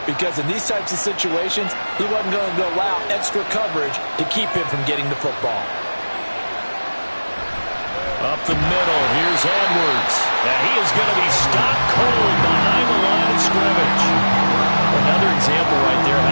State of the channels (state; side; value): inverted; both; correlation -1.00